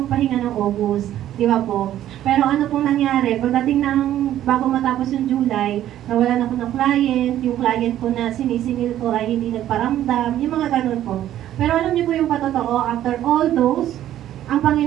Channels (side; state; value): left; quieter; 12.3 dB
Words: magpahinga ng August, di ba po? Pero ano pong nangyari, pagdating ng bago matapos yung July, nawalan ako ng client, yung client ko na sinisingil ko ay hindi nagparamdam, yung mga ganun po. Pero alam niyo po yung patotoo, after all those, ang